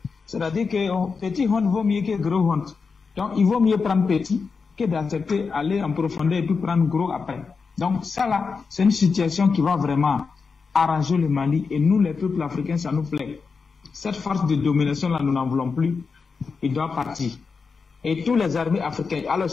C'est-à-dire que petit honte vaut mieux que gros honte. Donc, il vaut mieux prendre petit que d'accepter aller en profondeur et puis prendre gros après. Donc, ça là, c'est une situation qui va vraiment arranger le Mali. Et nous, les peuples africains, ça nous plaît. Cette force de domination là, nous n'en voulons plus. Il doit partir. Et tous les armées africaines. Alors,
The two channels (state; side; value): quieter; right; 5.0 dB